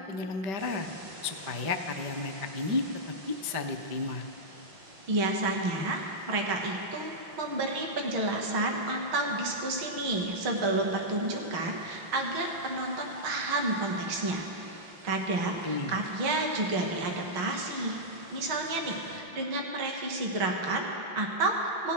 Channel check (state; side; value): late; left; 5.7 ms